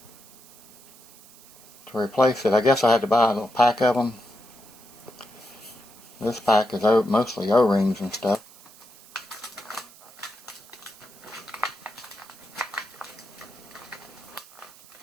to replace it. I guess I had to buy a little pack of them. This pack is mostly O-rings and stuff.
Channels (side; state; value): right; noise; hiss, 22 dB below the sound